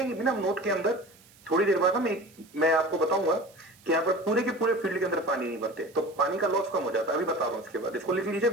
भी ना नोट के अंदर, थोड़ी देर बाद मैं आपको बताऊंगा कि यहाँ पर पूरे के पूरे फील्ड के अंदर पानी नहीं भरते, तो पानी का लॉस कम हो जाता है। अभी बता रहा हूँ, इसके बाद इसको लिख लीजिए,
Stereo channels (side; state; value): right; noise; hiss, 27 dB below the sound